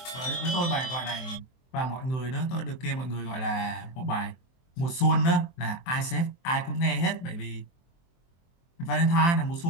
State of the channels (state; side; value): late; right; 23 ms